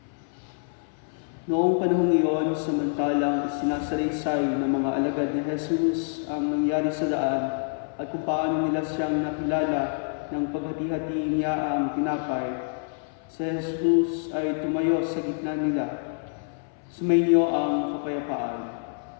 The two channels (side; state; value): right; silent; 58 dB below the other